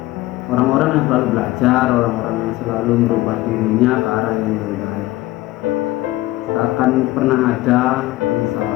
orang-orang yang selalu belajar, orang-orang yang selalu merubah dirinya ke arah yang lebih baik. Tak akan pernah ada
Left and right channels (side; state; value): right; quieter; 18.0 dB